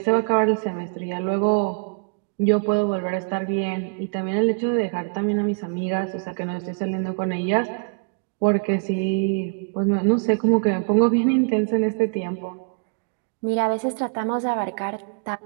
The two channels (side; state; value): left; quieter; 38.1 dB